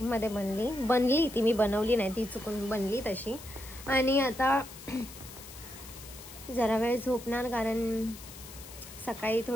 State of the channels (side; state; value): left; noise; hiss, 15 dB below the sound